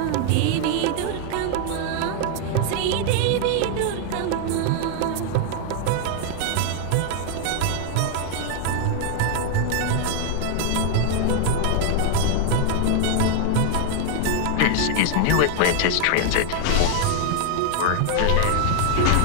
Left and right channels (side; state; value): both; different; correlation 0.00